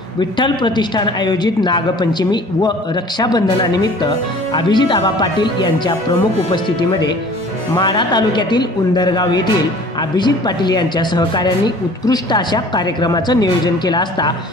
विठ्ठल प्रतिष्ठान आयोजित नागपंचमी व रक्षाबंधनानिमित्त अभिजित आबा पाटील यांच्या प्रमुख उपस्थितीमध्ये माढा तालुक्यातील उंदरगाव येथील अभिजित पाटील यांच्या सहकार्यांनी उत्कृष्ट अशा कार्यक्रमाचं नियोजन केलं असता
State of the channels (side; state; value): both; normal; correlation 0.48